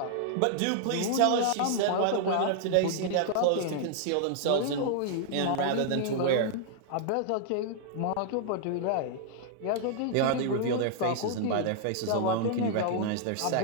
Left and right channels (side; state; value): both; different; correlation -0.01